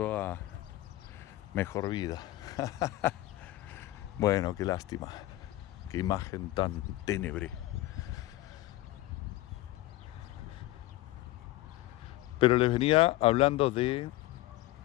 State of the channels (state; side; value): quieter; right; 16.9 dB